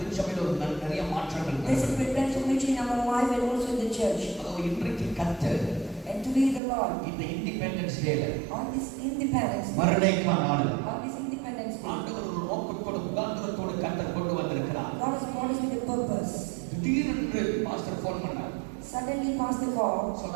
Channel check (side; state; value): left; drops out; at 6.6 s